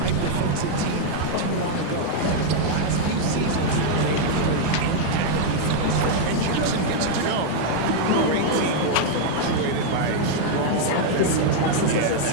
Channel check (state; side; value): different; both; correlation 0.00